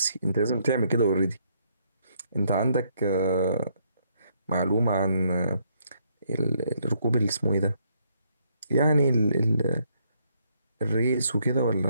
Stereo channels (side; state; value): both; inverted; correlation -0.72